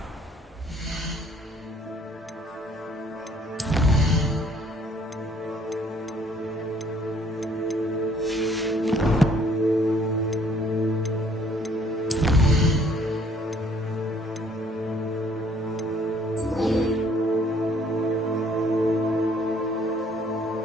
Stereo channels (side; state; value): both; normal; correlation 0.61